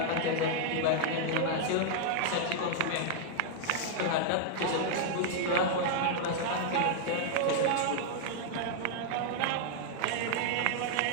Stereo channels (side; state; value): both; different; correlation -0.01